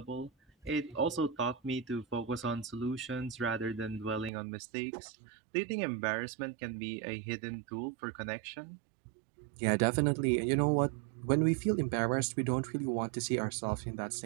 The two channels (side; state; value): left; drops out; at 4.3 s